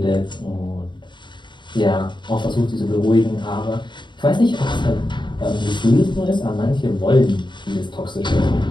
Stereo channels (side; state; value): right; late; 0.22 ms